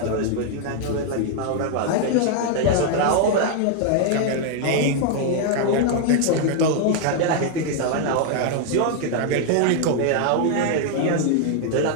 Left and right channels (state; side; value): different; both; correlation 0.00